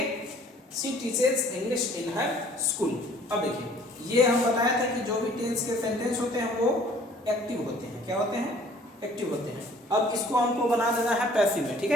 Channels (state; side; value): normal; both; correlation 0.55